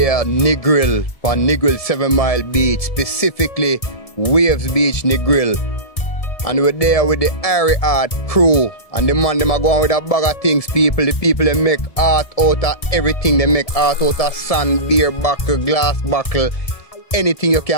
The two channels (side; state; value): right; late; 1.7 ms